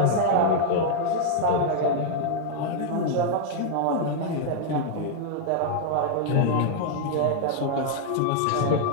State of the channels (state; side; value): different; both; correlation 0.00